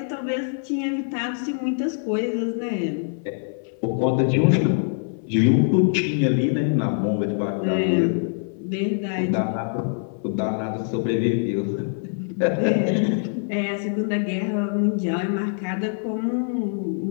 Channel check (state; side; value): silent; right; 59 dB below the other